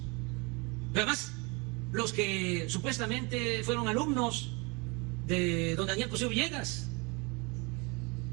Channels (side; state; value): left; quieter; 29.1 dB